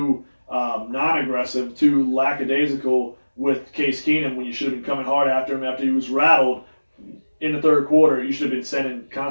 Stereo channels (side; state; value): both; inverted; correlation -1.00